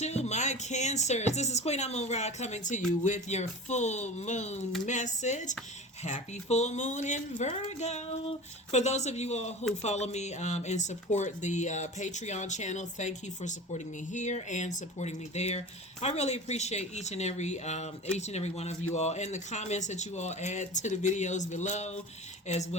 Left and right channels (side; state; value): both; normal; correlation 0.34